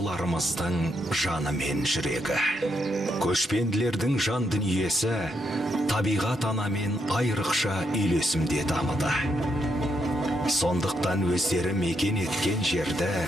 жаны мен жүрегі. Көшпенділердің жан дүниесі табиғат анамен айрықша үйлесімде дамыды. Сондықтан өздері мекен еткен жерді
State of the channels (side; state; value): both; normal; correlation 0.79